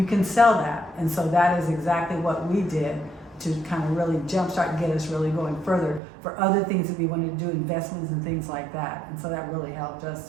can sell that. And so that is exactly what we did to kind of really jumpstart and get us really going further for other things that we wanted to do, investments and things like that. And so that really helped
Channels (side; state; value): left; drops out; at 6.0 s